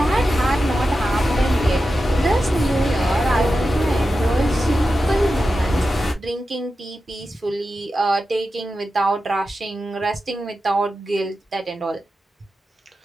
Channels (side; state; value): both; normal; correlation 0.91